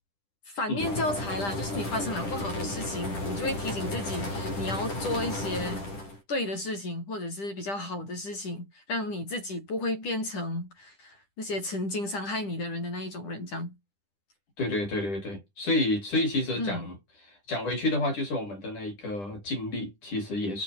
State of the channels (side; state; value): right; late; 10 ms